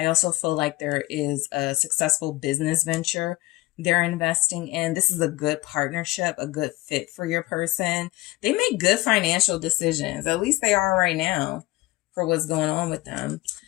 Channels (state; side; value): quieter; right; 19.9 dB